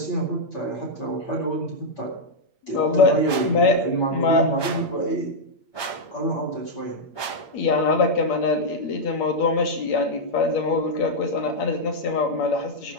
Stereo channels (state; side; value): late; right; 8.6 ms